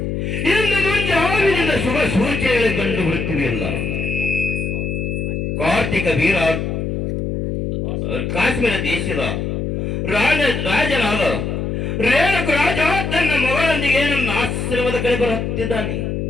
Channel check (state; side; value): noise; left; hum, 2 dB below the sound